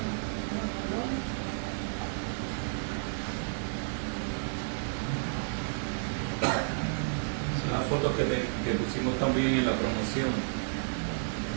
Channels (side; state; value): left; silent; digital silence